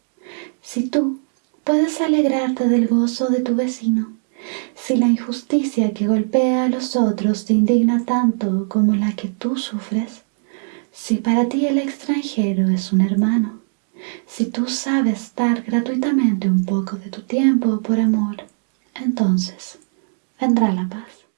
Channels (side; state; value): left; silent; digital silence